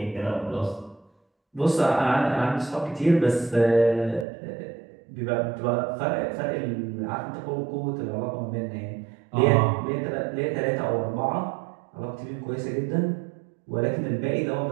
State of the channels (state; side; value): drops out; left; at 4.2 s